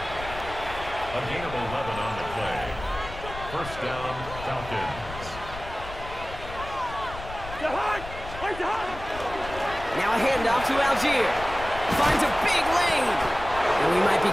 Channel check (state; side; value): noise; left; rumble, 12 dB below the sound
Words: gain of 11 on the play. First down, Falcons. Now a handoff to Algier. Finds a big lane. And we might be